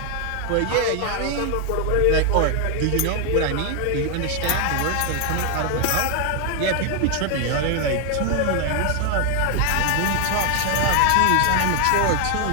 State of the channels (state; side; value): different; both; correlation 0.00